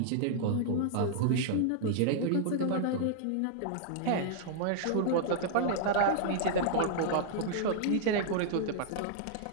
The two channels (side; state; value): both; different; correlation -0.01